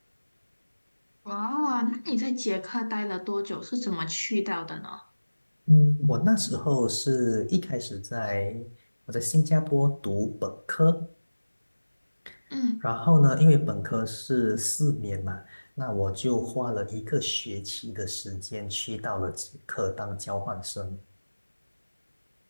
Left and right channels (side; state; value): both; inverted; correlation -1.00